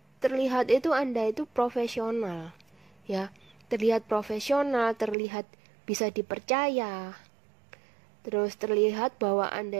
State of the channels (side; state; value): left; drops out; at 5.2 s